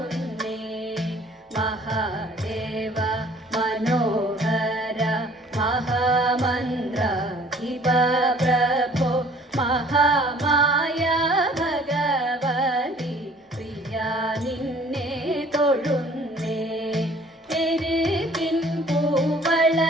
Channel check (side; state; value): both; normal; correlation 0.54